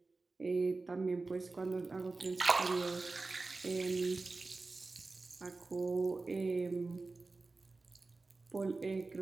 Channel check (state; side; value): quieter; left; 3.6 dB